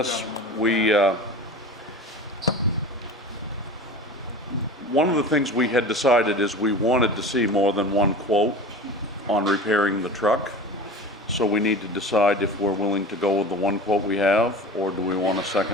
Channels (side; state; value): both; normal; correlation 0.35